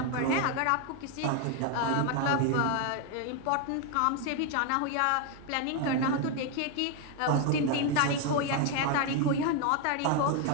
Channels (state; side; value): different; both; correlation 0.01